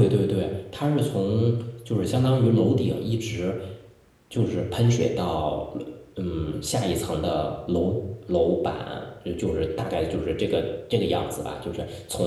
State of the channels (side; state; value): both; identical; correlation 1.00